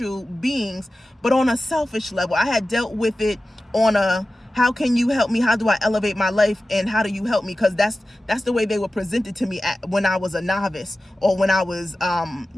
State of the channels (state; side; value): normal; both; correlation 0.95